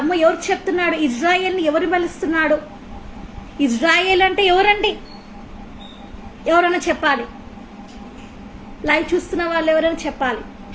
ఎవరు చెప్తున్నాడు? ఇజ్రాయేల్ని ఎవరు బలిస్తున్నాడు? ఇజ్రాయేల్ అంటే ఎవరండి? ఎవరైనా చెప్పాలి. లైవ్ చూస్తున్న వాళ్ళు ఎవరైనా చెప్పాలి,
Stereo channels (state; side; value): identical; both; correlation 1.00